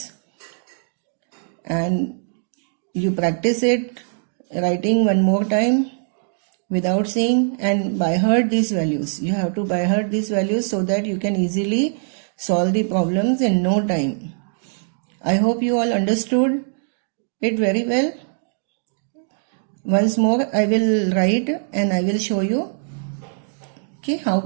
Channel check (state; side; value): silent; left; digital silence